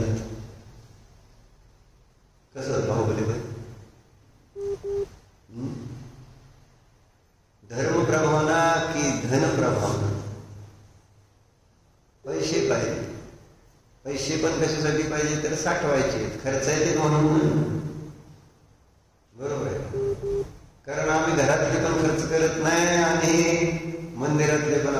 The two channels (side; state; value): both; identical; correlation 1.00